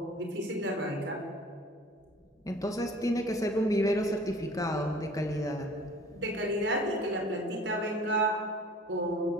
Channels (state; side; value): normal; both; correlation 0.48